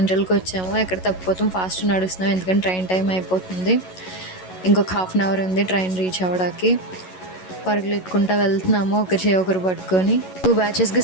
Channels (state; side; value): late; right; 11 ms